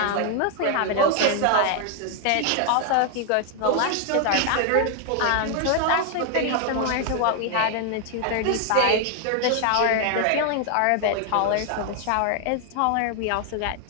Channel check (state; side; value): different; both; correlation 0.00